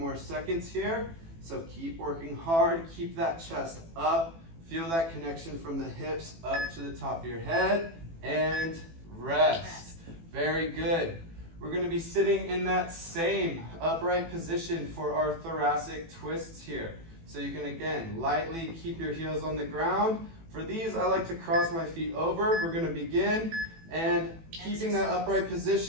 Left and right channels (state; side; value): late; left; 18 ms